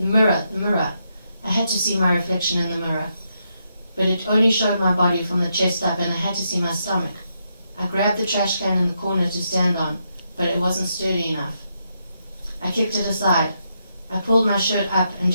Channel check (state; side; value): inverted; both; correlation -0.81